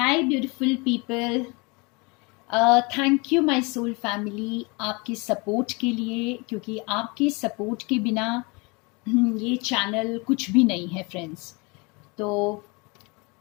Hi beautiful people, thank you my soul family आपकी support के लिए, क्योंकि आपके सपोर्ट के बिना ये चैनल कुछ भी नहीं है फ्रेंड्स। तो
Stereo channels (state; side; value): quieter; right; 28.5 dB